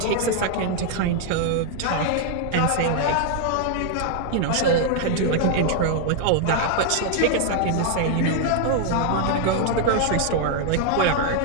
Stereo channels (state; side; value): different; both; correlation 0.00